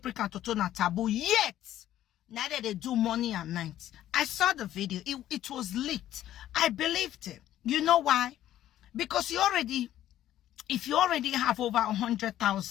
and Toto na taboo. Yet, now that they do morning and night. I saw the video. It was leaked. I believed it. You know why? Because if you already have over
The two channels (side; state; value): right; quieter; 12.6 dB